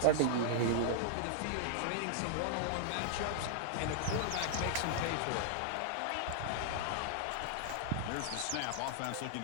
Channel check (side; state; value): both; different; correlation 0.00